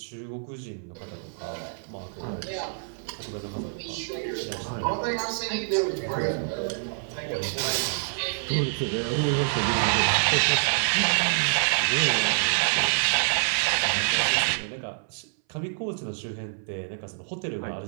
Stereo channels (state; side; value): silent; left; 59 dB below the other